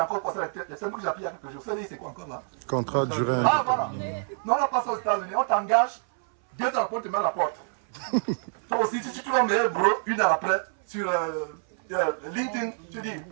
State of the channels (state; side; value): silent; left; 60 dB below the other